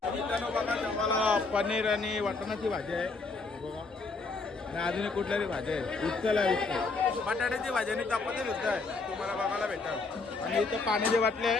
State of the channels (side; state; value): right; quieter; 3.9 dB